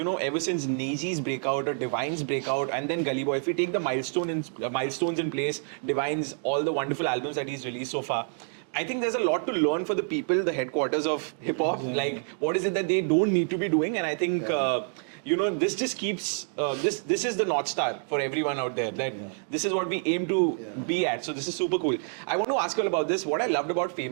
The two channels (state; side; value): silent; left; 57 dB below the other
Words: know, ever since Neji's breakout or Divine's breakout and then Gully Boy, if we take the milestones in place, Divine's, all the wonderful albums that he's released so far, I think there's a lot to learn for the people, the headquarters of hip hop. Like, what is it that they don't need to be doing? And I think, you know, this just keeps, this is the North Star for everyone out there. That this is what we aim to be at. So this is super cool. I want to ask you all about this. What I loved about